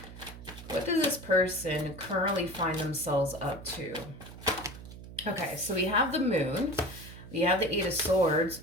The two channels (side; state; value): right; noise; hum, 14 dB below the sound